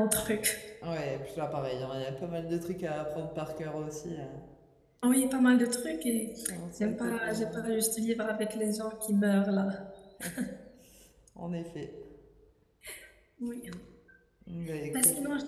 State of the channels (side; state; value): both; identical; correlation 1.00